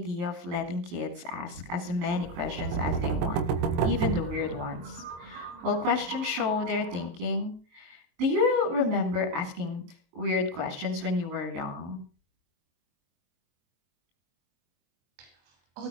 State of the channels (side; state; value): left; late; 23 ms